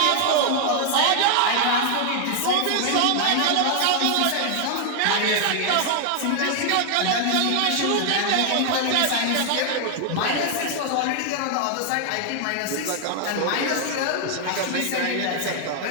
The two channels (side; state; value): both; different; correlation 0.00